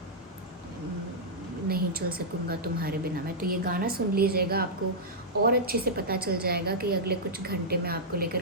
नहीं चल सकूँगा तुम्हारे बिना में। तो ये गाना सुन लीजिएगा, आपको और अच्छे से पता चल जाएगा कि अगले कुछ घंटे में आपको लेकर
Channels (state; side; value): normal; both; correlation -0.09